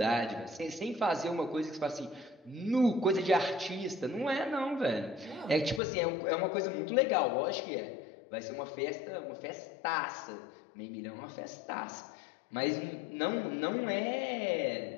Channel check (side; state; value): right; drops out; at 5.8 s